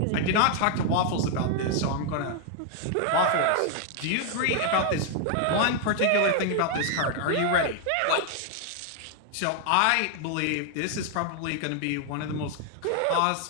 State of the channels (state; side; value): different; both; correlation 0.00